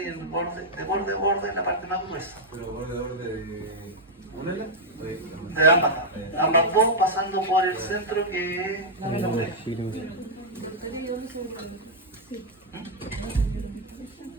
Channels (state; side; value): normal; both; correlation -0.03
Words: y el borde, de borde a borde en la parte más gruesa. Pero borde de una ala. De ambas dos pasando por el centro que es la oreja.